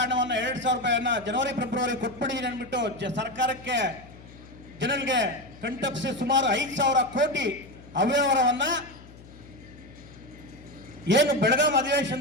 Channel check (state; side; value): noise; left; hum, 20 dB below the sound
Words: ಹಣವನ್ನು 2,000 ರೂಪಾಯಿಯನ್ನ ಜನವರಿ ಫೆಬ್ರವರಿ ಕೊಟ್ಬಿಟ್ಟಿದ್ದೀನಿ ಅಂದ್ಬಿಟ್ಟು ಸರ್ಕಾರಕ್ಕೆ ಜನರಿಗೆ ಕಂಟಪ್ಸಿ ಸುಮಾರು 5,000 ಕೋಟಿ ಅವ್ಯವಹಾರವನ್ನ ಏನು ಬೆಳಗಾಂ